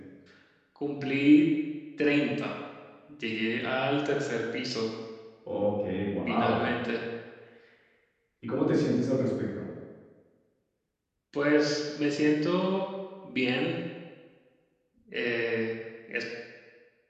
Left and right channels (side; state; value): both; identical; correlation 1.00